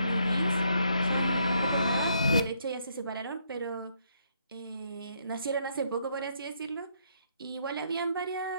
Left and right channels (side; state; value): both; inverted; correlation -0.72